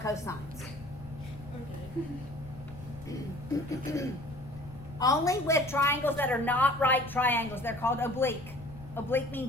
Okay. Only with triangles that are not right triangles. They're called oblique. Oblique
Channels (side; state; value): left; noise; rumble, 17 dB below the sound